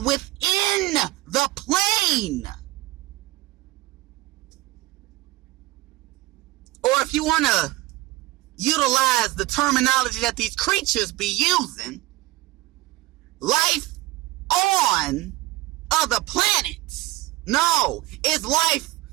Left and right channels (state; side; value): quieter; left; 18.6 dB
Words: within the plane. Or if you want to utilize the terminology that these creatures be using, life on other planets. No, it's life